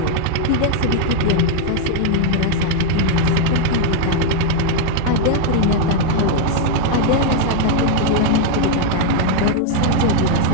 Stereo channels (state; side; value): different; both; correlation 0.00